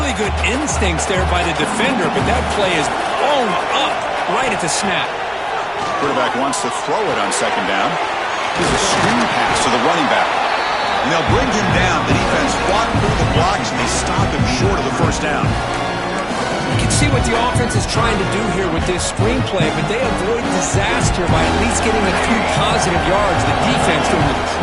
good instincts there by the defender, but that play is blown up right at the snap. Quarterback wants to throw it on second down. Here's a screen pass to the running back. And they'll bring him down. The defense fought through the blocks, and they stop him short of the first down. You can see what the offense is trying to do here with this screenplay, but they avoid disaster by at least getting a few positive yards. The defense doing a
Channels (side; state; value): both; identical; correlation 1.00